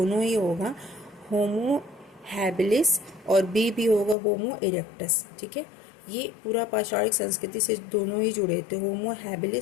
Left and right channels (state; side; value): drops out; right; at 4.2 s